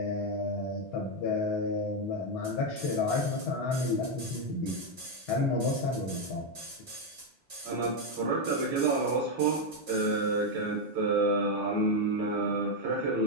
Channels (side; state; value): both; normal; correlation 0.03